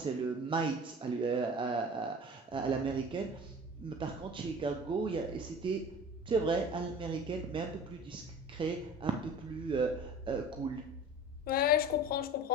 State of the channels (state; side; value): normal; both; correlation 0.40